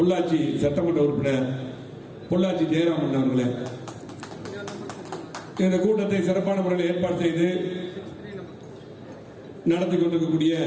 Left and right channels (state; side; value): identical; both; correlation 1.00